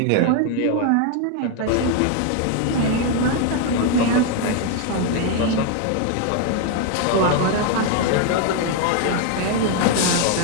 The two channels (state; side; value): different; both; correlation 0.01